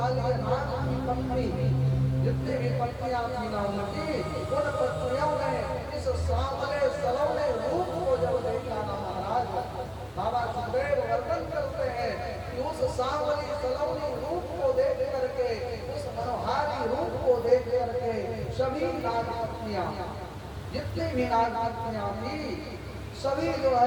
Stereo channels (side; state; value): both; identical; correlation 1.00